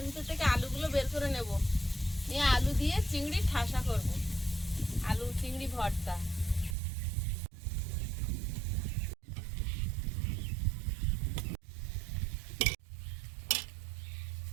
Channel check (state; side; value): drops out; left; at 6.8 s